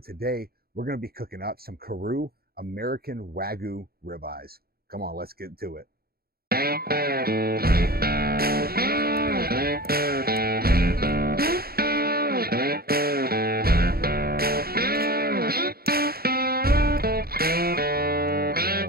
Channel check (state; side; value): late; left; 0.44 ms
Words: today we're going to be cooking up some Kosher American Wagyu ribeyes. Come on, let's get to it.